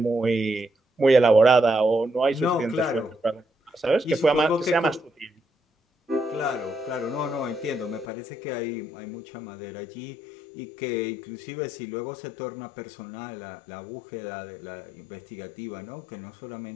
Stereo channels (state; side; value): drops out; right; at 8.1 s